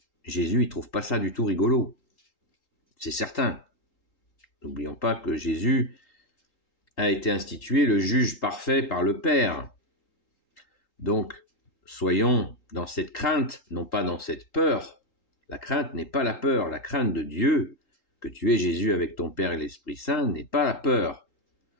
Jésus, il trouve pas ça du tout rigolo. C'est certain. N'oublions pas que Jésus a été institué le juge parfait par le Père. Donc, soyons dans cette crainte, non pas dans cette peur. La crainte n'est pas la peur. La crainte de Dieu, que tu es Jésus avec ton Père et l'Esprit Saint, n'est pas la peur.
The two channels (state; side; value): late; right; 3.8 ms